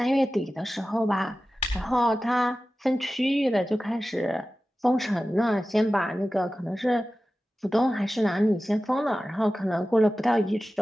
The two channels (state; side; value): normal; both; correlation 0.95